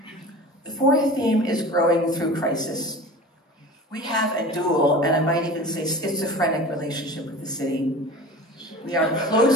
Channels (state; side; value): normal; both; correlation 0.37